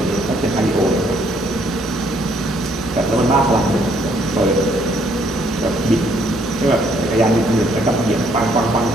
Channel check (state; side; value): normal; both; correlation 0.67